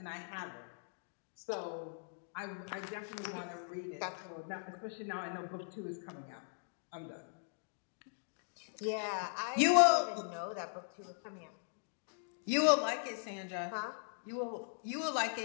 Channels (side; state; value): right; silent; digital silence